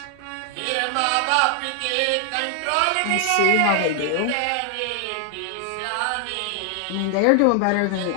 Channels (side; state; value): both; different; correlation 0.00